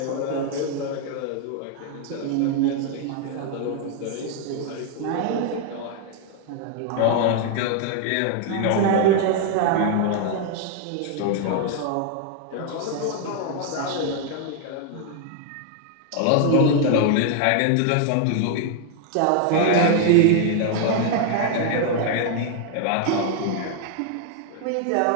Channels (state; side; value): different; both; correlation 0.00